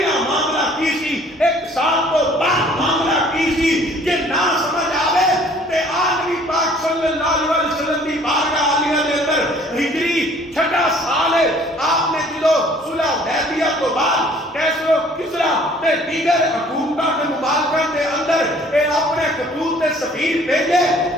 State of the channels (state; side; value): normal; both; correlation 0.55